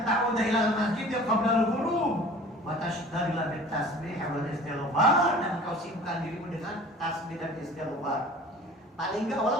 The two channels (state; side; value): normal; both; correlation 0.45